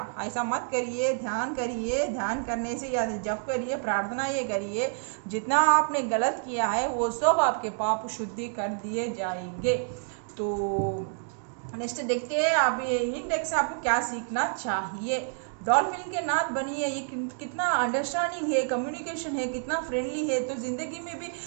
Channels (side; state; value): left; silent; digital silence